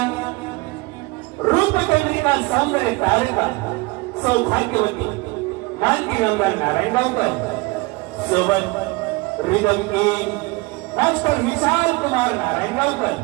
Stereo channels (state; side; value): quieter; left; 24.3 dB